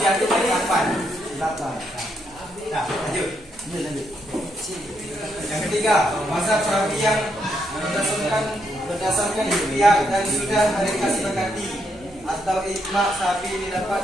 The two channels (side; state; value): both; normal; correlation 0.78